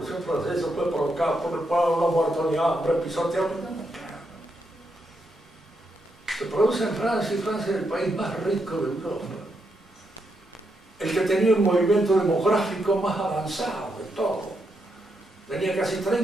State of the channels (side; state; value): both; normal; correlation 0.81